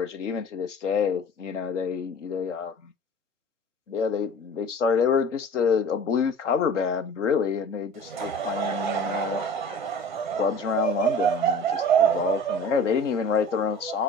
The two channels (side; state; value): both; normal; correlation 0.42